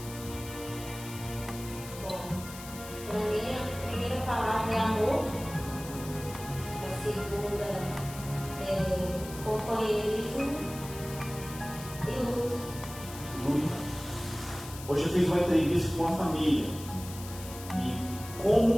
Para mim, a primeira palavra é amor, a segunda é companheirismo e luta. Luta. Hoje eu fiz uma entrevista com uma família e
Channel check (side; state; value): left; noise; hiss, 14 dB below the sound